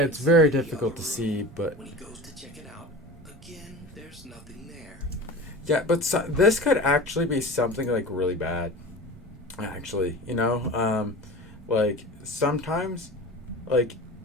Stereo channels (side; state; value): both; normal; correlation 0.34